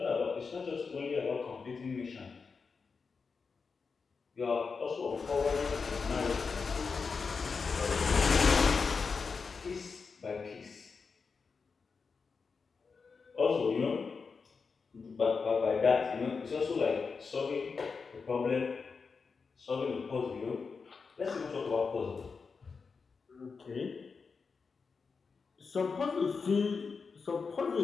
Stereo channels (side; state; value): right; quieter; 5.0 dB